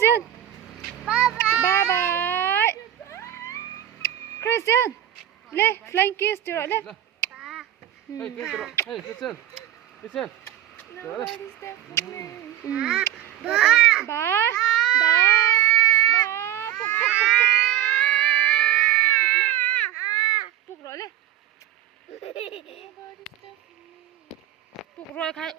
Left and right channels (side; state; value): left; quieter; 12.3 dB